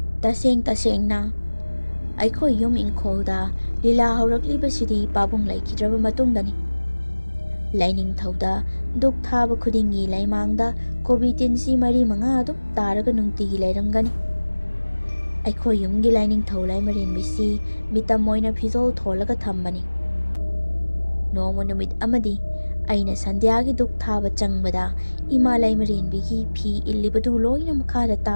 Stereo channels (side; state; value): both; inverted; correlation -1.00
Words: ꯇꯁꯦꯡ ꯇꯁꯦꯡꯅ ꯑꯩꯈꯣꯏ ꯌꯨꯝ ꯏꯪꯈꯣꯜꯗ ꯂꯤꯂꯥ ꯍꯧꯔꯛꯂꯤꯕꯁꯤꯗꯤ ꯄꯥꯕꯨꯡ ꯂꯩꯈꯤꯗ꯭ꯔꯕ ꯃꯇꯨꯡꯗꯅꯤ꯫ ꯂꯥꯏꯅꯤꯡꯊꯧꯗ ꯙꯨꯛ ꯊꯥꯕ ꯈꯨꯗꯤꯡꯒꯤ ꯂꯩꯃꯥꯡꯗ ꯀꯣꯕꯤ ꯇꯤꯟꯁꯤ 4-5 ꯑꯗꯨꯝ ꯇꯥꯔꯒ ꯅꯨꯡꯇꯤꯒꯤ ꯂꯩꯔꯝꯒꯅꯤ꯫ ꯑꯩꯈꯣꯏ ꯌꯨꯝꯒꯤ ꯂꯥꯏꯅꯤꯡꯊꯧ ꯂꯥꯏꯃꯔꯦꯟꯕꯤꯁꯤ ꯃꯤꯇꯝ ꯑꯣꯏꯅ ꯐꯤꯖꯣꯜ ꯊꯣꯜꯂꯒ ꯊꯝꯕꯅꯤ꯫ ꯅꯣꯡꯃ ꯅꯨꯃꯤꯠ ꯑꯃꯗꯤ ꯑꯩꯅ ꯁꯟꯙ꯭ꯌꯥꯒꯤ ꯙꯨꯛ ꯊꯥꯕ ꯆꯪꯕꯗ ꯏꯃꯥ ꯂꯥꯏꯃꯔꯦꯟꯕꯤꯒꯤ ꯐꯤ ꯏꯜꯂꯤꯕꯗꯨ ꯂꯣꯏꯅ ꯃꯈꯥꯗ